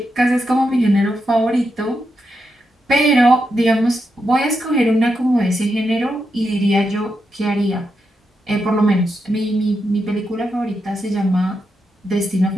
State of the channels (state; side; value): normal; both; correlation 0.85